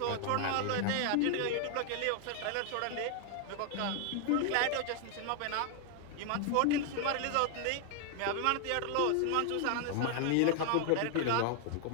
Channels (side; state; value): both; different; correlation 0.00